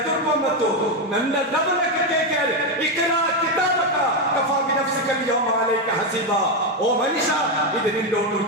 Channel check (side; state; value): both; normal; correlation 0.07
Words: ಬಂತು. ನನ್ನ ರಬ್ಬಿನಕ್ಕೆ ಕೇಳ್ತಾರೆ ಇಕ್ರಾ ಕಿತಾಬಕ ಕಫಾ ಬಿನಫ್ಸಿಕ ಅಲ್ಯೌಮ ಅಲೈಕ ಹಸೀಬಾ. ಓ ಮನುಷ್ಯ ಇದು ನಿನ್ನ ಒಂದು